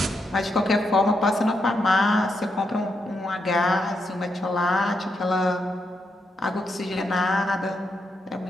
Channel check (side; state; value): both; normal; correlation 0.82